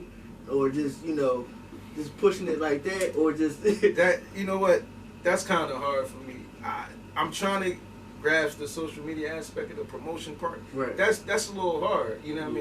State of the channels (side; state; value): both; identical; correlation 1.00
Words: Or just, just pushing it like that, or just... that, what, that's kind of hard for me. I'm trying to grasp the social media aspect of the promotion part. Right. That's a little hard, you know what I